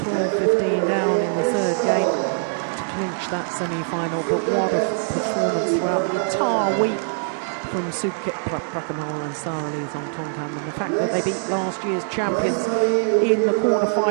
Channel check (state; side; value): silent; left; digital silence